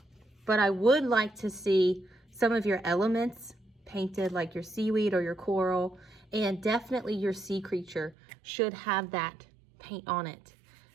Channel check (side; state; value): left; drops out; at 8.2 s